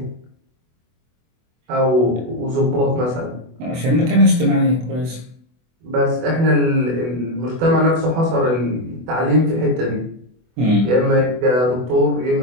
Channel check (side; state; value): left; late; 24 ms